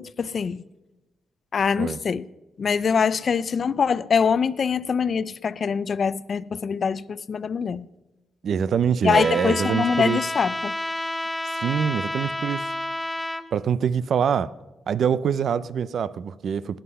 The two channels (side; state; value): both; normal; correlation 0.76